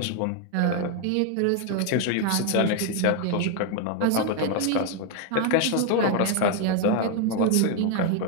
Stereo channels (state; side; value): different; both; correlation 0.01